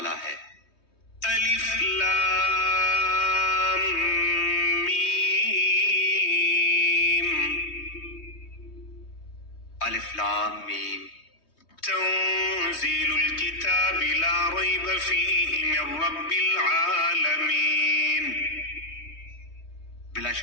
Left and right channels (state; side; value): late; right; 3.2 ms